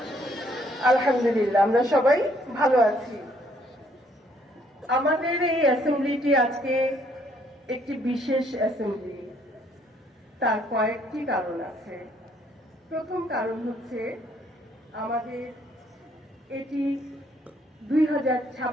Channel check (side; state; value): both; normal; correlation 0.67